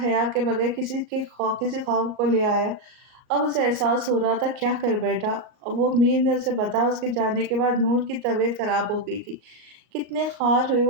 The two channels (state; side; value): late; left; 38 ms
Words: حیا کے بغیر کسی خوف کو لے آیا۔ اب اسے احساس ہو رہا تھا کیا کر بیٹھا۔ وہ میر نے اسے بتایا اس کے جانے کے بعد نور کی طبیعت خراب ہو گئی تھی۔ کتنے خوار ہوئے